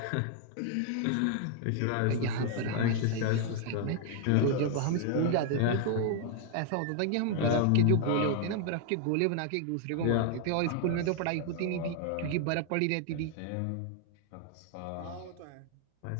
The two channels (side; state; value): both; different; correlation 0.00